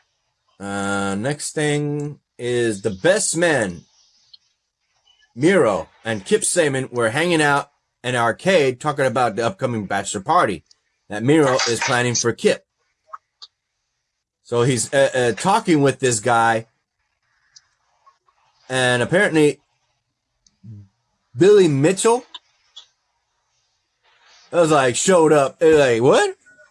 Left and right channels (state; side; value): identical; both; correlation 1.00